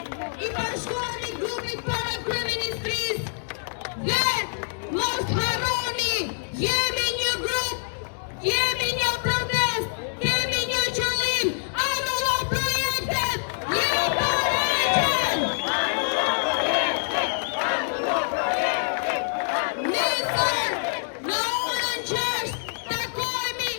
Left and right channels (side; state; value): right; silent; digital silence